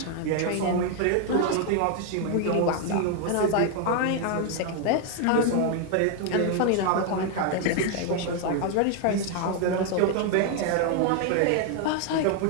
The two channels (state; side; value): different; both; correlation 0.01